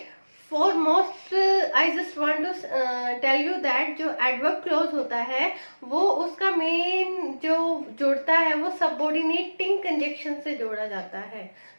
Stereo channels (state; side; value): inverted; both; correlation -1.00